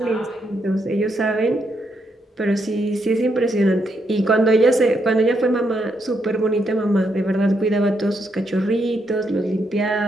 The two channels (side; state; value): both; normal; correlation 0.78